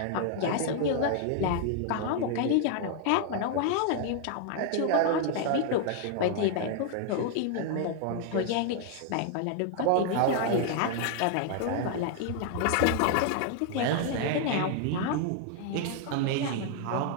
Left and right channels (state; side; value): different; both; correlation 0.00